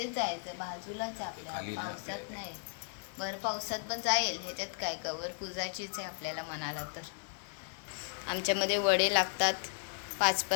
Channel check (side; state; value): right; silent; digital silence